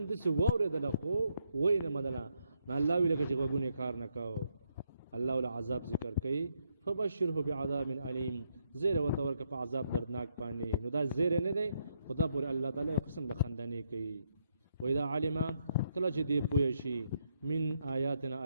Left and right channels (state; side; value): inverted; both; correlation -0.77